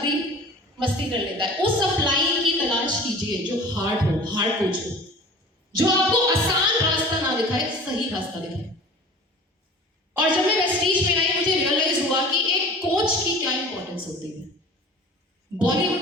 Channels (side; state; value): both; normal; correlation 0.42